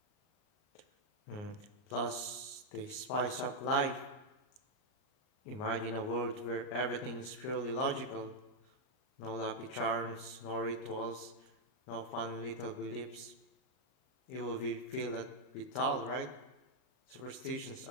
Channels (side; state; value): right; late; 38 ms